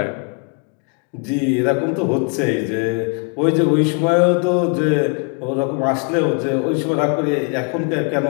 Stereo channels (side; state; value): right; quieter; 36.9 dB